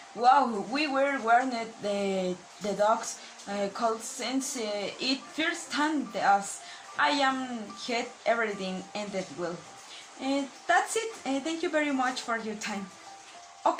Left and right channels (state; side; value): identical; both; correlation 1.00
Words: Wow, we were warned the dogs cold since it first time us. I am had everything ended well. That's it. Thank you very much for your time.